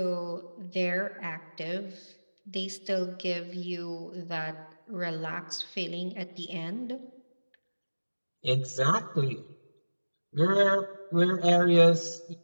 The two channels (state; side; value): inverted; both; correlation -1.00